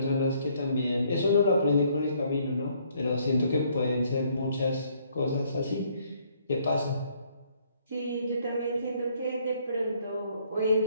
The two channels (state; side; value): inverted; both; correlation -0.66